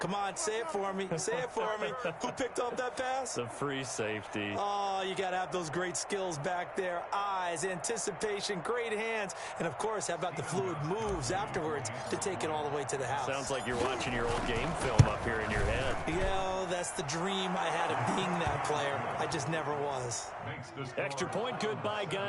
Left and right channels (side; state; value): both; identical; correlation 1.00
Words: on, say it for me. Say it for me. Who picked up that pass? The free safety. Oh, you got to have those great skills back there. Eyes, anticipation, great hands. And, of course, how about the fluid moves afterwards to take it all the way to the house? Sounds like you're watching your old game film up here in your head. Yeah, that's the dream I had of being that player. I just never was. Extra point good by